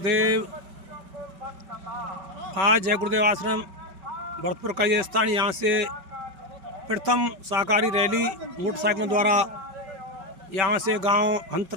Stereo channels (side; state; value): left; late; 5.3 ms